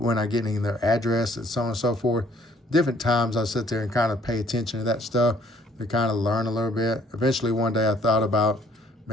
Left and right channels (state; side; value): normal; both; correlation 0.61